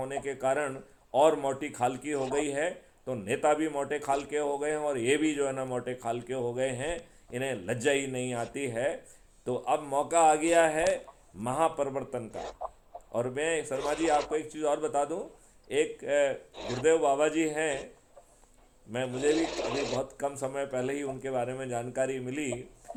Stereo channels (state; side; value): identical; both; correlation 1.00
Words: के कारण और मोटी खाल की हो गई है। तो नेता भी मोटे खाल के हो गए हैं और ये भी जो है ना मोटे खाल के हो गए हैं, इन्हें लज्जा ही नहीं आती है। तो अब मौका आ गया है महापरिवर्तन का। और मैं शर्मा जी आपको एक चीज़ और बता दूं, एक गुरुदेव बाबा जी हैं, मुझे भी अभी बहुत कम समय पहले ही उनके बारे में जानकारी मिली।